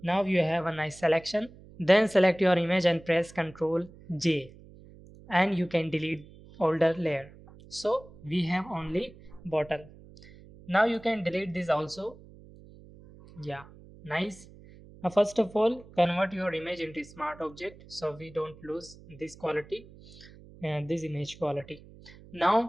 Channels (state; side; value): noise; right; hum, 21 dB below the sound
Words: Now you have a nice selection. Then select your image and press Ctrl J and you can delete older layer. So we have only bottle. Now you can delete this also. Yeah, nice. Now first of all, convert your image into smart object so we don't lose this quality and this image quality.